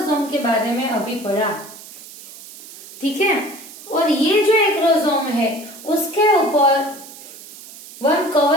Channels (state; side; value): noise; right; hiss, 17 dB below the sound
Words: के बारे में अभी पढ़ा। ठीक है, और ये जो एक्रोसोम है उसके ऊपर वन